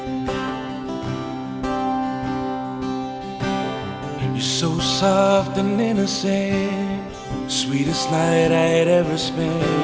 You're so soft and innocent. Sweetest night I had ever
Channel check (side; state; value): both; identical; correlation 1.00